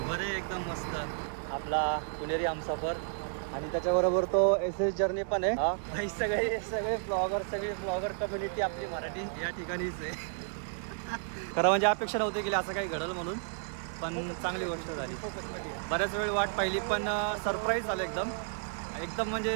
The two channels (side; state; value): left; silent; digital silence